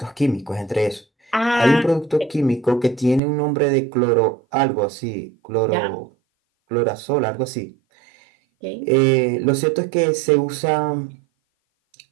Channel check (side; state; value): left; drops out; at 3.2 s